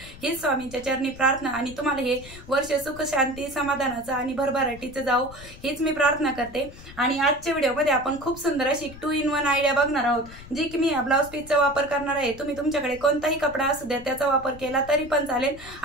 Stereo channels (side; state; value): left; noise; rumble, 17 dB below the sound